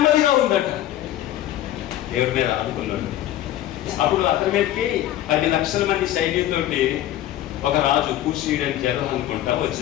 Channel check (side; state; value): right; quieter; 13.1 dB